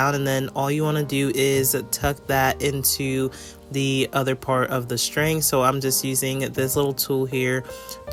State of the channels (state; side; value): identical; both; correlation 1.00